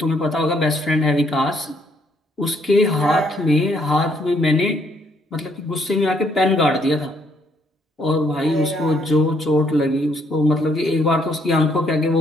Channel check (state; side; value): normal; both; correlation 0.70